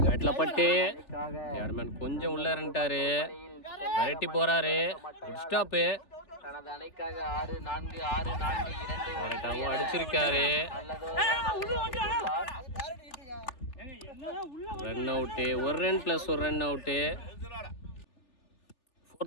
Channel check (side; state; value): right; late; 3.4 ms